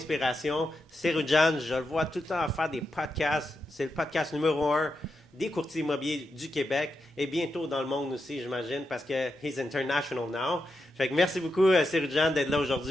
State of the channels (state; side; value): normal; both; correlation 0.86